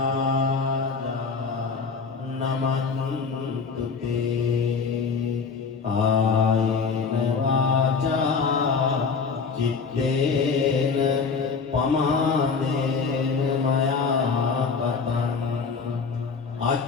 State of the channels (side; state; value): right; quieter; 5.3 dB